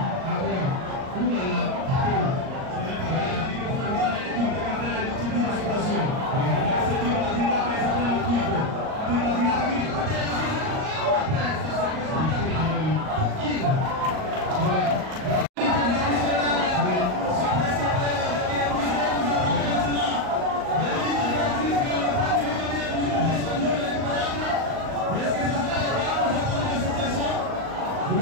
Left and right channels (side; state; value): left; late; 38 ms